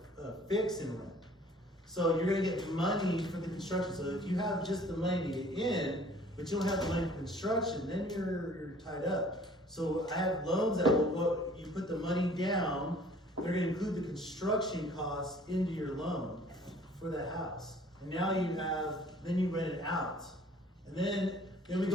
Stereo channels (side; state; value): both; normal; correlation 0.53